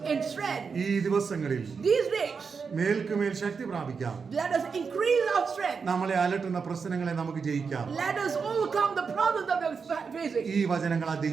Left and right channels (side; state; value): left; quieter; 5.5 dB